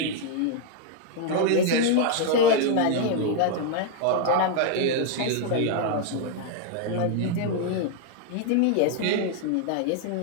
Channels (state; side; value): different; both; correlation 0.00